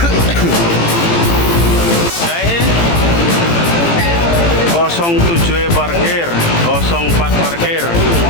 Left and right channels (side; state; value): right; late; 18 ms